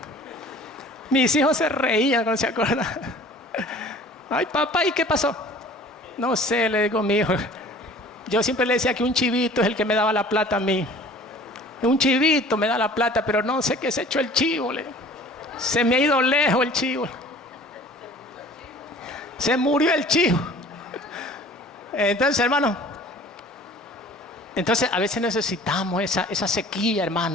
Mis hijos se reían cuando se acuerdan. Ay, papá, ¿y qué pasó? No sé, le digo a mi hijo. Yo siempre le decía que un chivito es el que me daba la plata a mí. Un chivito me da la plata, pero no sé qué se echó el chivo. Se me ha ido lejos el chivo. Se murió el chivo. Entonces, hermano, a veces necesitamos esa sequía,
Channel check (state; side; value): normal; both; correlation 0.47